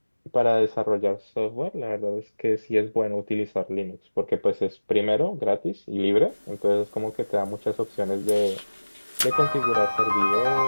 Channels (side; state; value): both; inverted; correlation -1.00